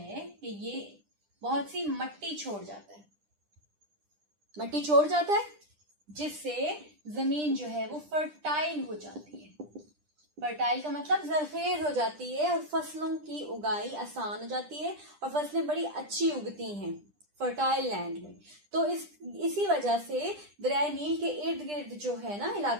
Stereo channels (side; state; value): left; late; 10 ms